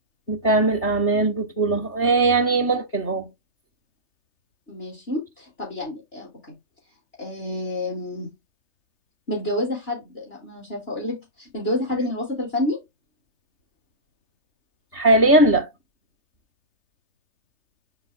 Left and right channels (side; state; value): right; late; 3.3 ms